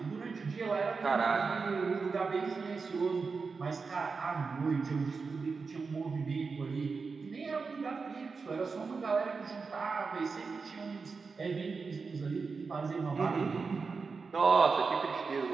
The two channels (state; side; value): quieter; left; 4.7 dB